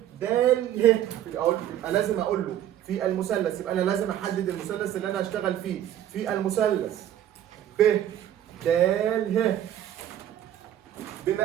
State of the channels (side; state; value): left; quieter; 11.3 dB